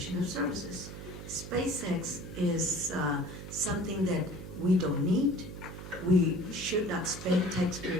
of services. SpaceX is something that we don't need. We should not spend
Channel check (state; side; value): noise; right; hum, 11 dB below the sound